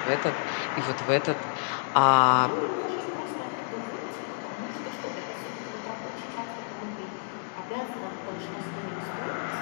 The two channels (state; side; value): silent; right; digital silence